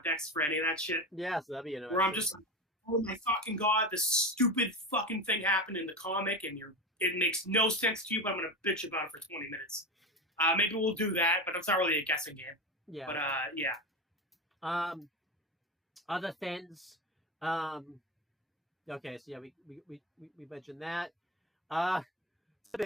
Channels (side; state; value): both; normal; correlation 0.22